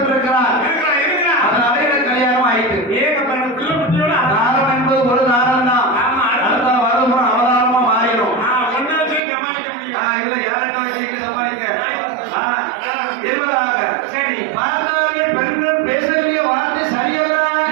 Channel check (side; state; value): left; drops out; at 9.2 s